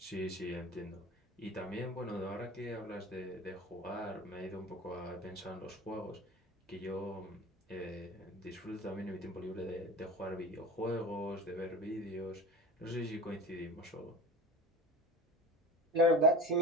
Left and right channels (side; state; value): both; normal; correlation 0.33